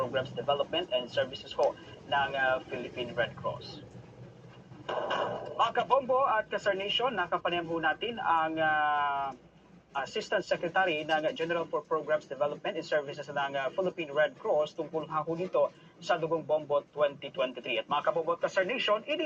Development and Services po ng Philippine Red Cross. Mga kabombo at kasarnation, nakapanayam ho natin ang Assistant Secretary ng General for Programs Development and Services ng Philippine Red Cross tungkol ho dito sa Dugong Bombo 2023. At mga kabombo at kasarnation,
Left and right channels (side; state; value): both; identical; correlation 1.00